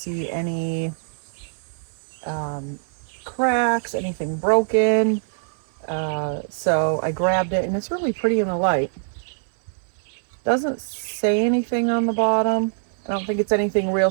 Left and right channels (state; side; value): silent; left; 60 dB below the other